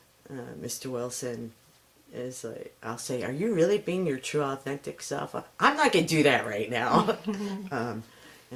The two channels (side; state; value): both; identical; correlation 1.00